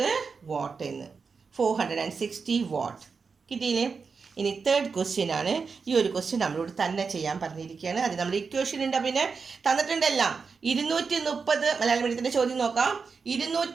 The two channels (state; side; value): quieter; left; 5.1 dB